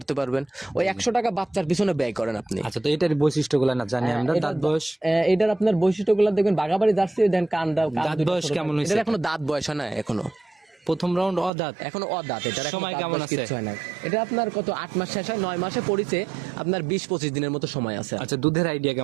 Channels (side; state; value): left; drops out; at 11.5 s